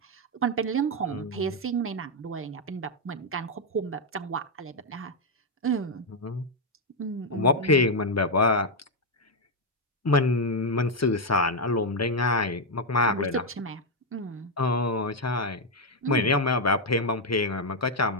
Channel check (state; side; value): normal; both; correlation 0.01